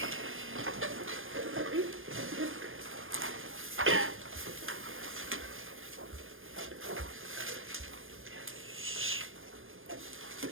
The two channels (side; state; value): left; late; 0.59 ms